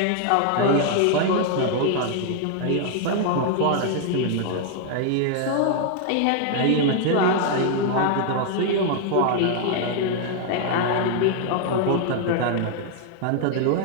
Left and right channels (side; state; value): both; different; correlation 0.00